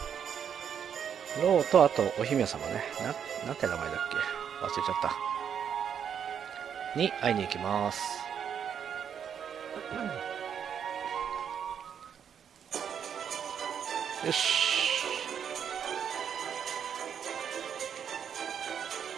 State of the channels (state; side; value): quieter; left; 8.1 dB